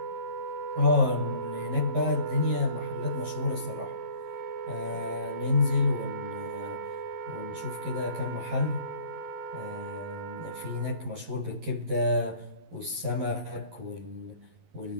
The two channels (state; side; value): late; left; 11 ms